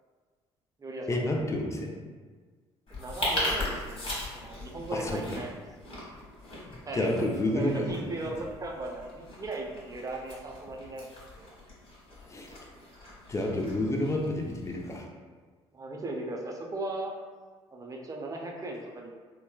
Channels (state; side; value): normal; both; correlation 0.56